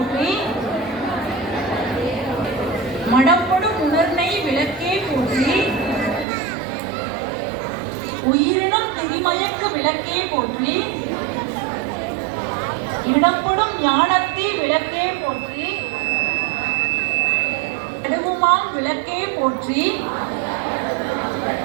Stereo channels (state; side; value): drops out; left; at 6.2 s